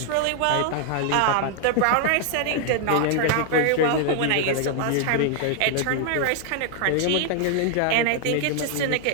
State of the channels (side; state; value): both; different; correlation 0.00